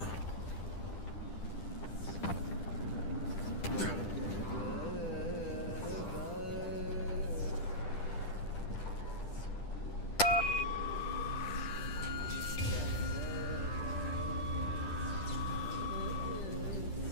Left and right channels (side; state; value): right; late; 10 ms